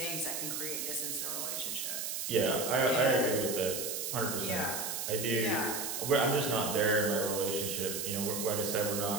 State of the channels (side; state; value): right; noise; hiss, 3 dB below the sound